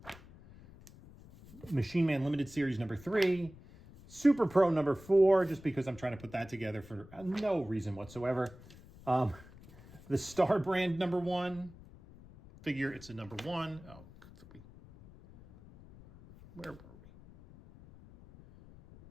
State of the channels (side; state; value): left; noise; rumble, 20 dB below the sound